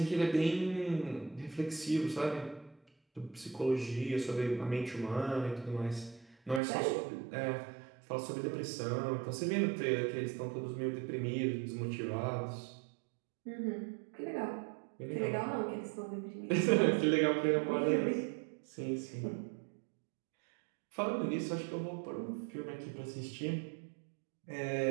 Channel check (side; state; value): left; drops out; at 6.6 s